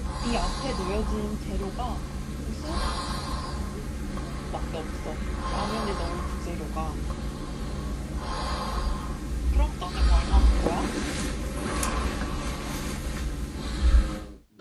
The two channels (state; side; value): identical; both; correlation 1.00